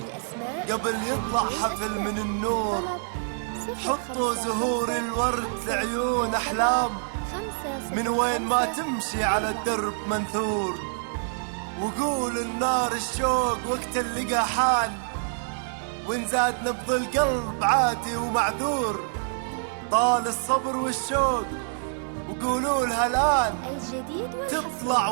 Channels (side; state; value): left; silent; 57 dB below the other